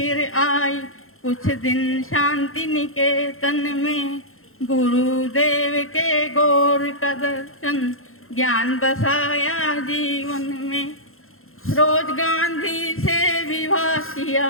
आई कुछ दिन शांति निकेतन में। गुरुदेव के गौर का दर्शन ज्ञान बसाया जीवन में। रोज गांधी से विवाह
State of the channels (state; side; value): late; right; 0.61 ms